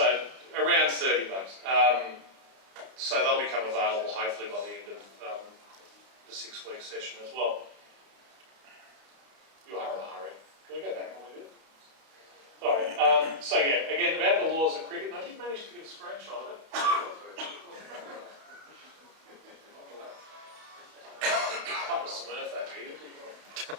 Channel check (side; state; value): left; late; 31 ms